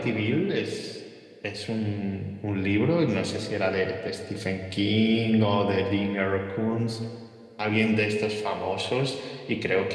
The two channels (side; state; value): both; identical; correlation 1.00